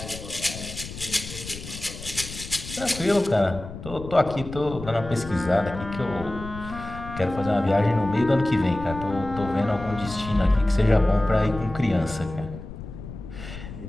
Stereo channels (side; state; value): left; noise; rumble, 11 dB below the sound